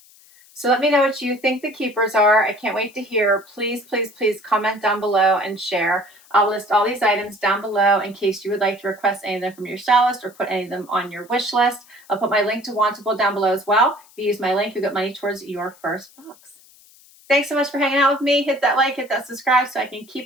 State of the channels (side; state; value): left; noise; hiss, 26 dB below the sound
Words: So let me know what you think the keepers are. I can't wait to hear. Please, please, please comment down below and share. I'll list all these items down below in case you would like to request any of them from your stylist or put any of them on your wish list. I'll put my link to Wantable down below as well. If you use my link, you'll get money towards your first box. Thanks so much for hanging out with me. Hit that like, hit that subscribe so I can